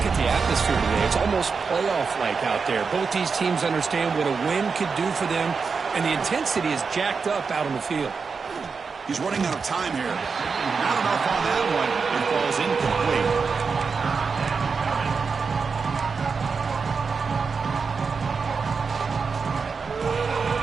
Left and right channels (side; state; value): left; quieter; 5.2 dB